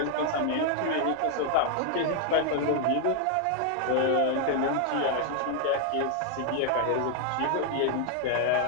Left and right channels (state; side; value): different; both; correlation 0.00